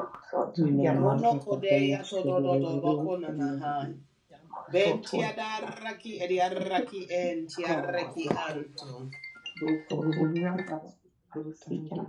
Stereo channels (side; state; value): both; identical; correlation 1.00